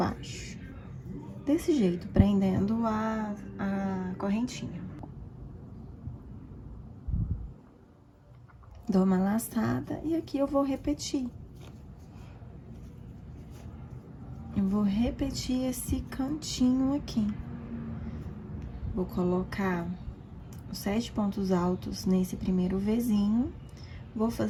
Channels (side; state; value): both; identical; correlation 1.00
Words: Desse jeito, prendendo a correntinha. Dou uma laçada e aqui eu vou repetir. Eu vou repetir esse cantinho aqui. Vou colocar os 7 pontos altos nesse primeiro Vzinho. Vou